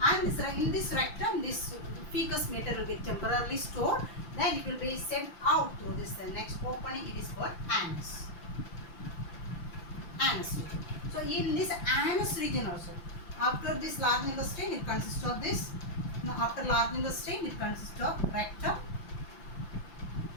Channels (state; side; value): late; right; 5.9 ms